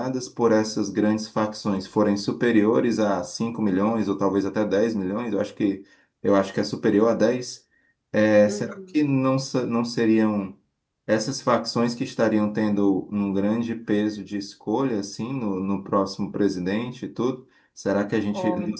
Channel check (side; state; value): both; identical; correlation 1.00